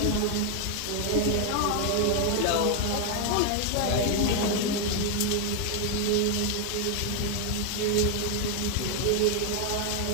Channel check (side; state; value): both; different; correlation 0.01